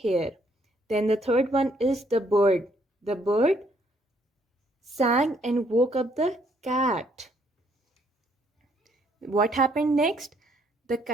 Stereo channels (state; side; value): normal; both; correlation 0.68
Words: Then the third one is the bird. The bird sang and woke up the cat. What happened next? The